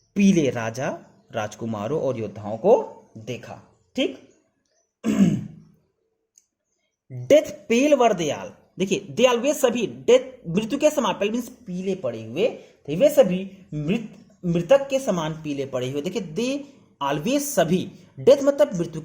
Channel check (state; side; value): identical; both; correlation 1.00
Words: पीले राजा राजकुमारों और योद्धाओं को देखा। ठीक, डेथ पेल वर दयाल, देखिए दयाल वे सभी, डेथ मृत्यु के समान, पेल मीन्स पीले पड़े हुए थे, वे सभी मृतक के समान पीले पड़े हुए। देखिए दे ऑलवेज सभी, डेथ मतलब मृत्यु